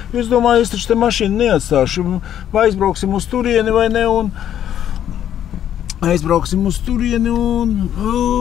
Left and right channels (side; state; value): right; quieter; 10.4 dB